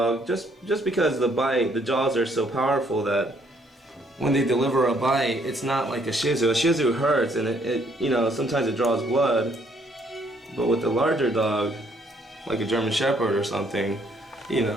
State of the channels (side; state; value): both; normal; correlation 0.67